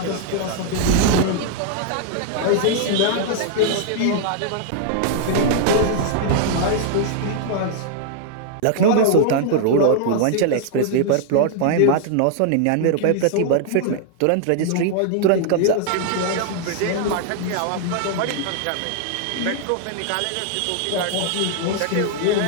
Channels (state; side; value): different; both; correlation -0.01